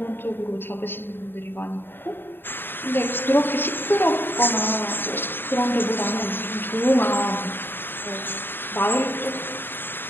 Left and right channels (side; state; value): right; late; 0.098 ms